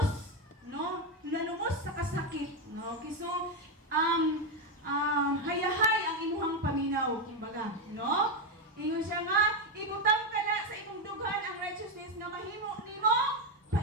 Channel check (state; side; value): normal; both; correlation 0.08